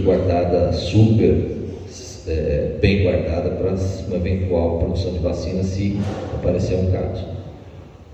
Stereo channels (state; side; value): identical; both; correlation 1.00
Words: guardada super bem guardada para uma eventual produção de vacina se aparecer um caso,